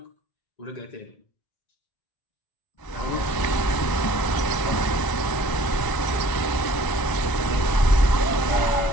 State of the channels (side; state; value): right; late; 1.0 ms